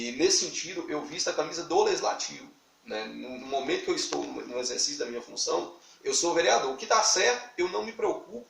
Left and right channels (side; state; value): both; identical; correlation 1.00